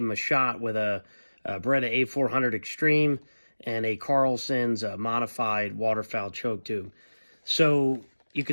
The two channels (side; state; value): both; inverted; correlation -1.00